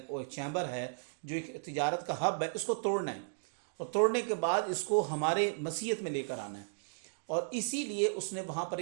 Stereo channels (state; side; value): silent; left; digital silence